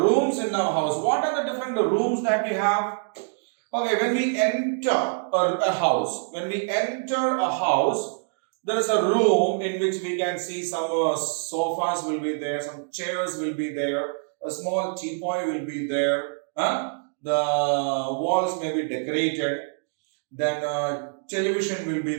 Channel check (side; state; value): left; silent; digital silence